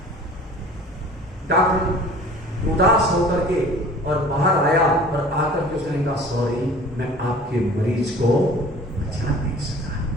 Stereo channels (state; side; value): normal; both; correlation 0.46